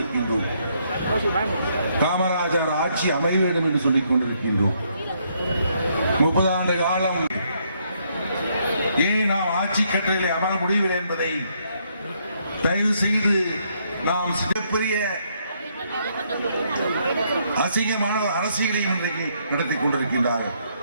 காமராஜர் ஆட்சி அமைய வேண்டும் என்று சொல்லிக் கொண்டிருக்கின்றோம். 30 ஆண்டு காலம் ஏன் நாம் ஆட்சி கட்டளையில் அமர முடியவில்லை என்பதை தயவு செய்து நாம் சிறப்புரிய அசிங்கமான அரசியலை இன்றைக்கு நடத்தி கொண்டிருக்கின்றார்கள்.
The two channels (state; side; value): inverted; both; correlation -0.72